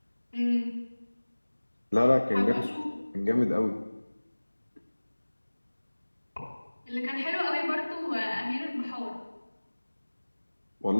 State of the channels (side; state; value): both; inverted; correlation -1.00